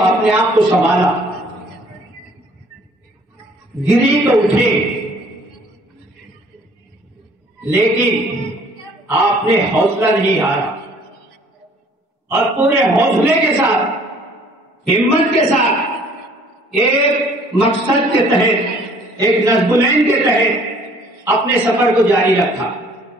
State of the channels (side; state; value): both; normal; correlation 0.57